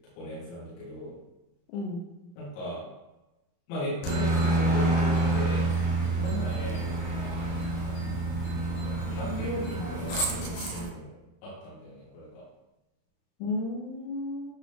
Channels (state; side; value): late; right; 35 ms